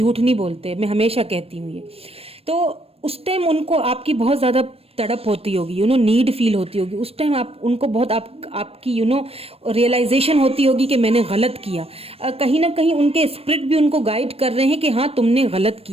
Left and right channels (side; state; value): left; late; 0.28 ms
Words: नहीं बोलते, मैं हमेशा कहती हूँ ये। तो उस टाइम उनको आपकी बहुत ज्यादा तड़प होती होगी, नीड फील होती होगी उस टाइम, आप उनको बहुत आपकी रियलाइजेशन होती होगी कि मैंने गलत किया। कहीं ना कहीं उनके स्पिरिट भी उनको गाइड कर रहे हैं कि हाँ तुमने गलत